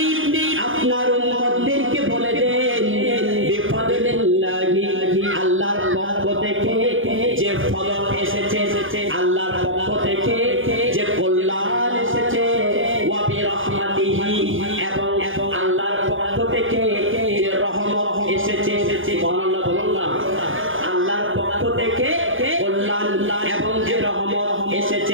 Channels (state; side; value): late; left; 0.58 ms